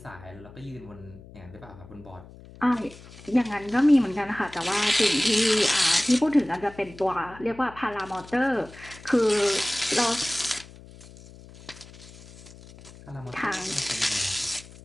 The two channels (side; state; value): left; noise; hum, 19 dB below the sound